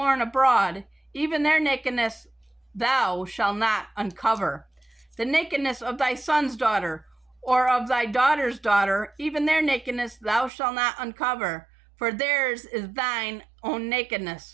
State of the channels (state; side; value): drops out; left; at 10.5 s